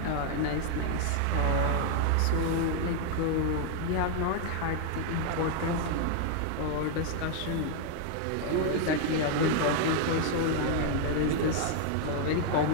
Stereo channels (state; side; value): different; both; correlation 0.00